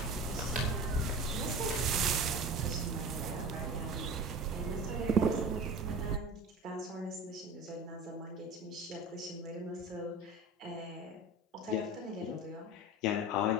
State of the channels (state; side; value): normal; both; correlation 0.33